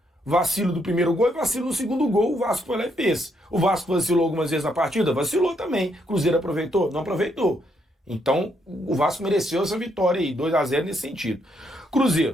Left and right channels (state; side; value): normal; both; correlation 0.75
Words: Vacilo do primeiro gol e vacilo no segundo gol, o Vasco foi lá e fez. O Vasco vacilou algumas vezes na partida? Vacilou também. O Cruzeiro aproveitou? Não aproveitou. Então, o Vasco mereceu essa vitória aí, 2-0 nesse sentido.